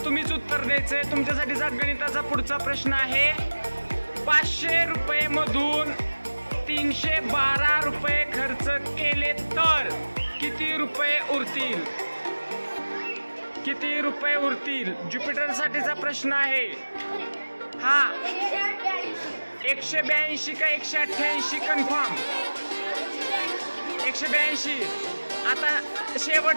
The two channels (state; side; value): inverted; both; correlation -1.00